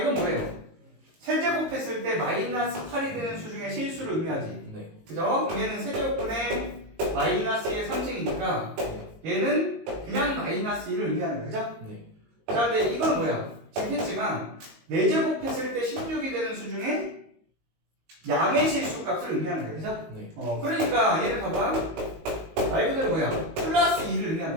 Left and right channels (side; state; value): left; late; 19 ms